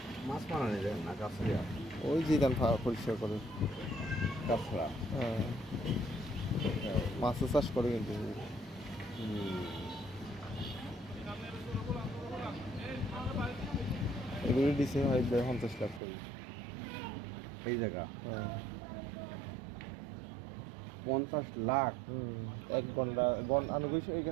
মাছ মারা নিয়ে যাবেন না গাছড়িয়া? ওই জিদান পরিষ্কার করে। গাছড়া। হ্যাঁ, মাছের চাষ করে কিন্তু। এগুলো দিছে হয় 50 লাখ করে। এই জায়গা হ্যাঁ। 50 লাখ? এক ঘন্টা আনুগিক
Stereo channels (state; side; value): drops out; left; at 16.0 s